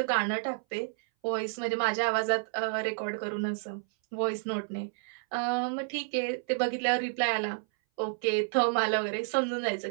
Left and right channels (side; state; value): left; silent; 58 dB below the other